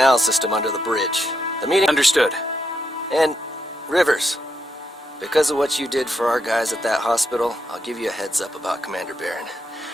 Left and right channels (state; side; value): normal; both; correlation 0.81